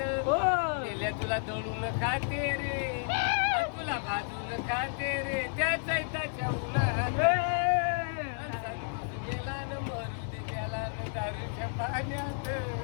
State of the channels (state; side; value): silent; right; digital silence